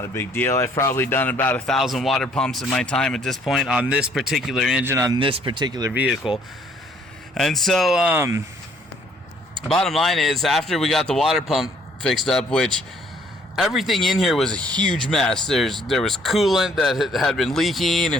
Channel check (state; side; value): normal; both; correlation 0.62